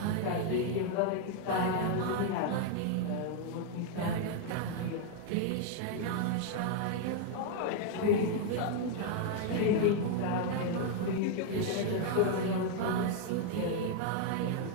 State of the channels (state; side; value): different; both; correlation 0.00